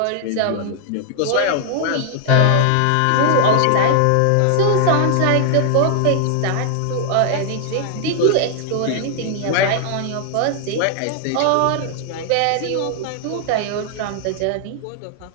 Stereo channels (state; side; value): different; both; correlation 0.00